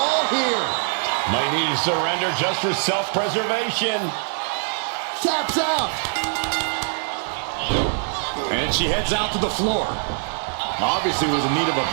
here? Might need to surrender just for self-preservation. Taps out. And she heads out to the floor. Obviously was in need of a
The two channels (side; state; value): left; silent; 57 dB below the other